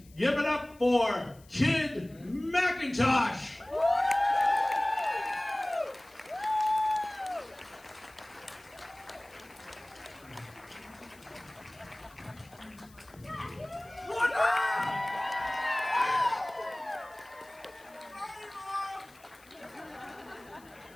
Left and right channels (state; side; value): noise; left; hiss, 26 dB below the sound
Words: give it up for Kid McIntosh.